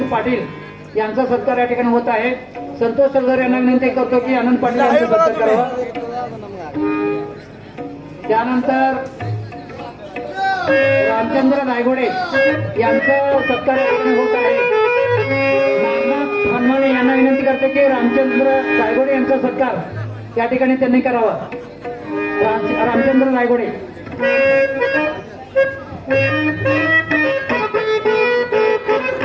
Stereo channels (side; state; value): both; identical; correlation 1.00